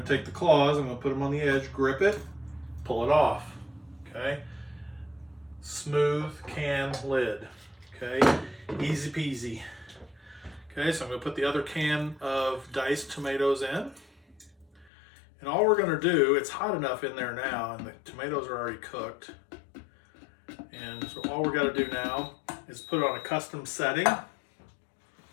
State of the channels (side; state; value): right; drops out; at 14.9 s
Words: to take the claws, I'm going to put them on the edge, grip it, pull it off. Okay, smooth can lid. Okay, easy peasy. Okay, so I'm going to put the other can of diced tomatoes in. And all we're going to do, it's hot enough in there now, and the tomatoes are already cooked. And so all we're got to do now is put it on a custom setting.